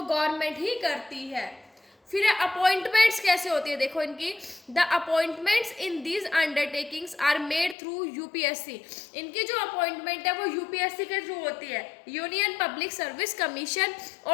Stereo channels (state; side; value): drops out; right; at 7.8 s